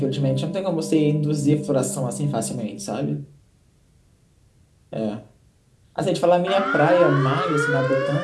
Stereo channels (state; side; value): identical; both; correlation 1.00